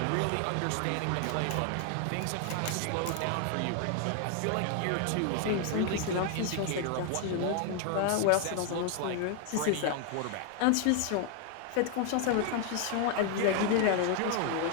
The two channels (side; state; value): both; different; correlation 0.00